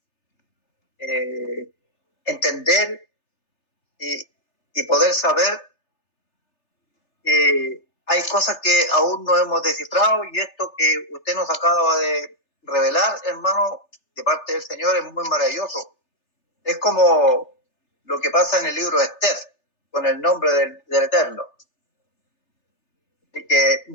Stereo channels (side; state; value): right; late; 3.3 ms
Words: entender y poder saber que hay cosas que aún no hemos descifrado y esto que usted nos acaba de revelar, hermano, de parte del Señor es muy maravilloso. Es como lo que pasa en el libro de Esther, con el nombre del Eterno. Así que